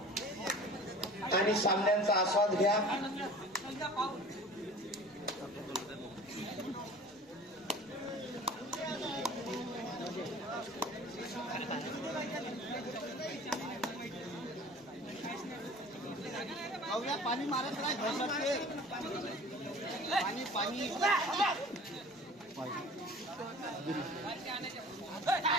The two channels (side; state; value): both; normal; correlation 0.43